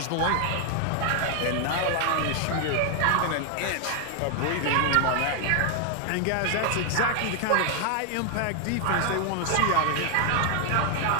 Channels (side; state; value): both; different; correlation 0.00